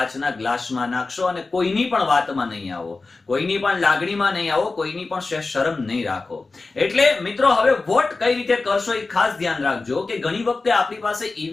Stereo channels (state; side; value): quieter; right; 3.7 dB